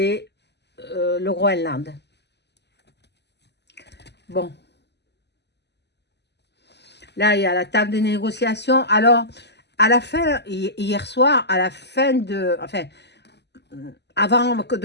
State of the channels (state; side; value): late; right; 0.50 ms